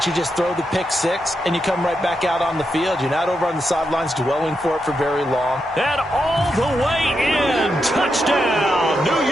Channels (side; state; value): both; normal; correlation 0.85